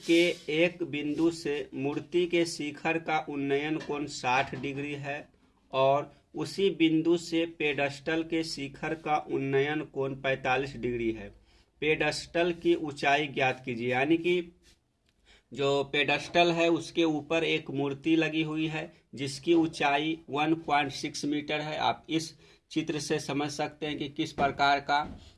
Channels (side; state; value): both; identical; correlation 1.00